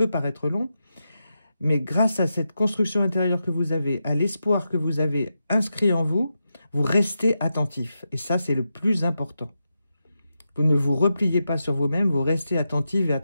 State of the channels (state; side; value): inverted; both; correlation -0.87